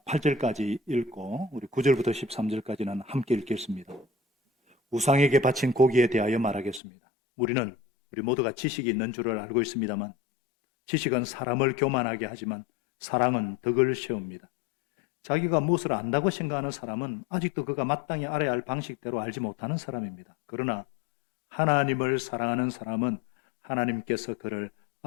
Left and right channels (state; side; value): drops out; right; at 6.8 s